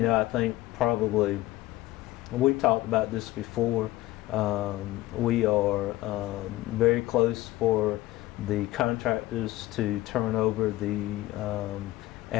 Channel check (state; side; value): quieter; right; 16.9 dB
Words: think probably we've talked about this before. We are very close for the contractors to turn over the